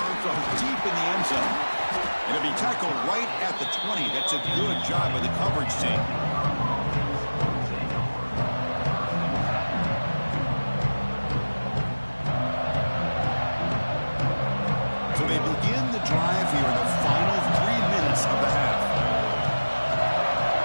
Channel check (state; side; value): inverted; both; correlation -1.00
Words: from deep in the end zone. And it'll be tackled right at the 20. That's a good job by the coverage team. So they begin the drive here in the final 3 minutes of the half.